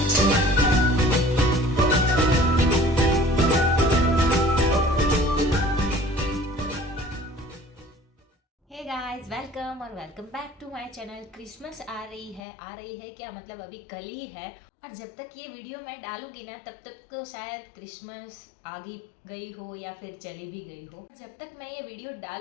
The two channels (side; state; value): right; drops out; at 12.4 s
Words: हे गाइस, वेलकम और welcome back to my channel. Christmas आ रही है क्या मतलब अभी कल ही है। और जब तक ये वीडियो मैं डालूंगी ना तब तक तो शायद क्रिसमस आ गई हो या फिर चली भी गई हो। जब तक मैं ये वीडियो